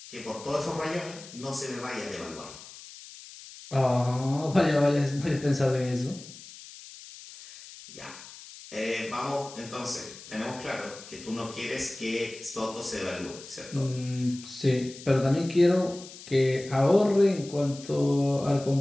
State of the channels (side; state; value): left; noise; hiss, 16 dB below the sound